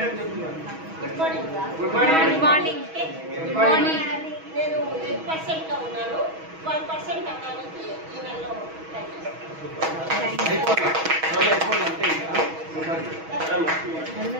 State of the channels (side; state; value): left; late; 6.2 ms